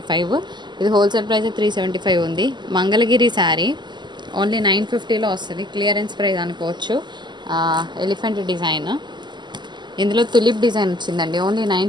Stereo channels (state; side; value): late; left; 0.21 ms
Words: ఇది హోల్సేల్ ప్రైస్ 375 ఉంది. మంగళగిరి శారీ ఓన్లీ 950లో వస్తుంది. క్లియరెన్స్ ప్రైస్ అనుకోవచ్చు. ఎలిఫెంట్ డిజైన్, ఇందులో తులిప్ డిజైన్ వచ్చిందండి. ఓన్లీ